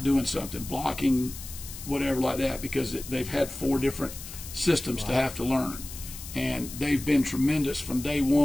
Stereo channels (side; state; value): left; noise; hiss, 12 dB below the sound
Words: doing something, blocking, whatever like that, because they've had 4 different systems to have to learn. And they've been tremendous from day